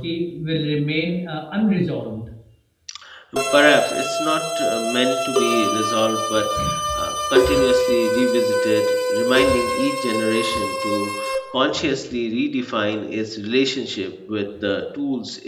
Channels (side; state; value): both; identical; correlation 1.00